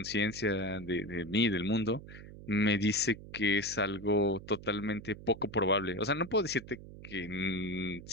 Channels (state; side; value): noise; right; hum, 15 dB below the sound